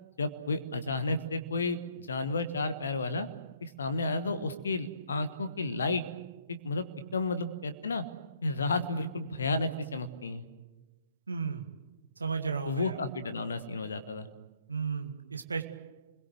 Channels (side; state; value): both; inverted; correlation -0.66